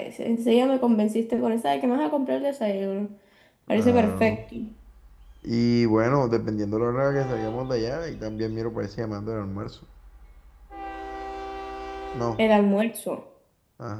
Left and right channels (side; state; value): both; identical; correlation 1.00